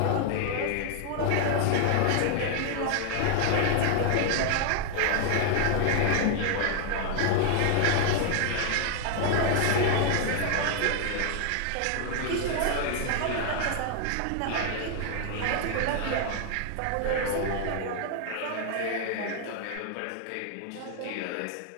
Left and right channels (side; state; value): both; different; correlation 0.00